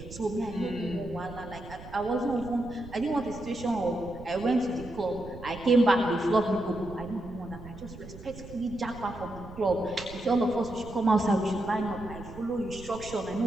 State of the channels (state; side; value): noise; right; rumble, 14 dB below the sound